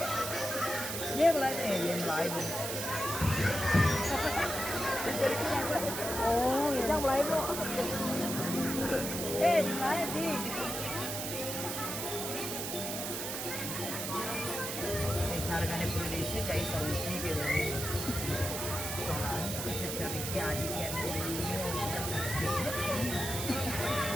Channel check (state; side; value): noise; right; hiss, 4 dB below the sound